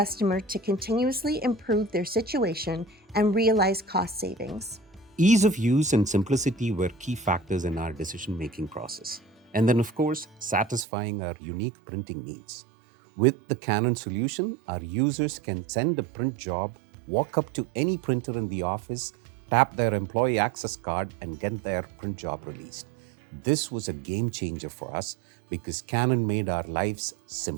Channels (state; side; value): drops out; left; at 10.9 s